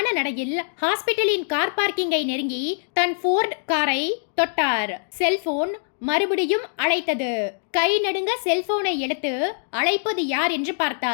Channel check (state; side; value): silent; right; digital silence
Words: நடையில் ஹாஸ்பிட்டலின் கார் பார்க்கிங்கை நெருங்கி தன் ஃபோர்ட் காரை தொட்டார். செல்போன் மறுபடியும் அழைத்தது. கை நடுங்க செல்போனை எடுத்து அழைப்பது யார் என்று